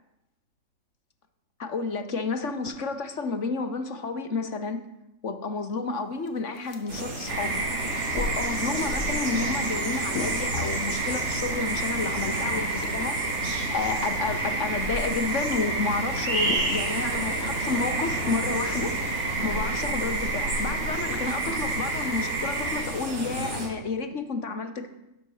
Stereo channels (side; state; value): right; late; 3.3 ms